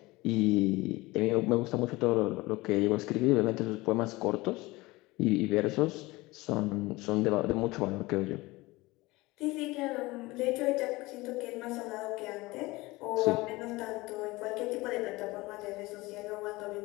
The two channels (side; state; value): right; quieter; 21.1 dB